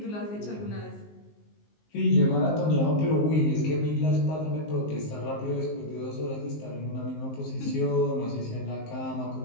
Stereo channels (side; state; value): right; late; 19 ms